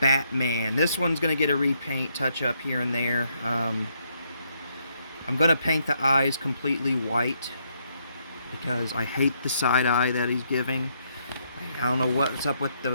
This one's gonna get a repaint touch up here and there. I'm gonna paint the eyes completely white because I hate the side eye that he's giving. I don't know what's up with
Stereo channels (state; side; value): inverted; both; correlation -0.74